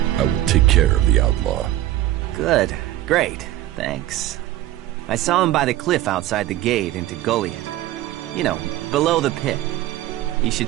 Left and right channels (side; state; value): left; quieter; 14.6 dB